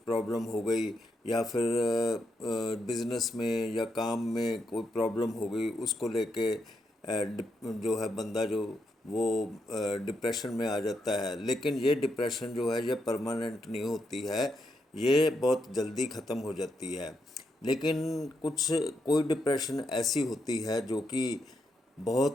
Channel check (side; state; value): both; normal; correlation 0.81